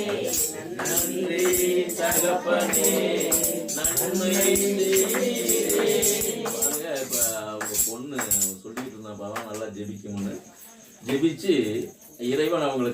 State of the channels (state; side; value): identical; both; correlation 1.00